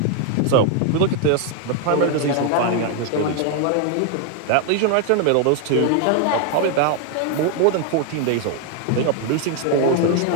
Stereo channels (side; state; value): both; different; correlation 0.01